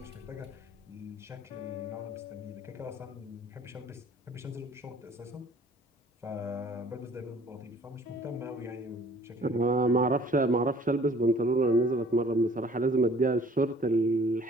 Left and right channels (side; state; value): both; normal; correlation 0.54